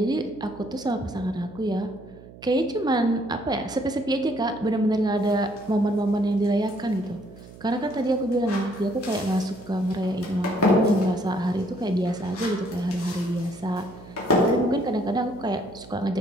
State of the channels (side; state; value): right; noise; hum, 19 dB below the sound